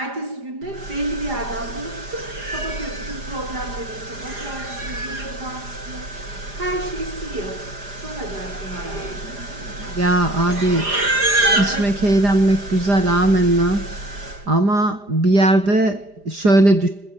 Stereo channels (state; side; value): late; left; 5.0 ms